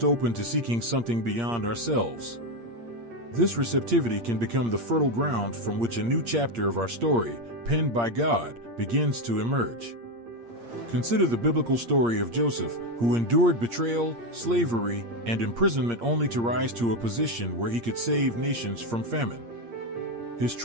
open to seeking something beyond ourselves. This receptivity can become the fertile ground from which a new chapter of our story, penned by God, begins to emerge. Consider the biblical story of Joseph, who endured betrayal, slavery, and imprisonment only to rise to a position where he could save nations from famine. His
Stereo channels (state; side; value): late; left; 8.6 ms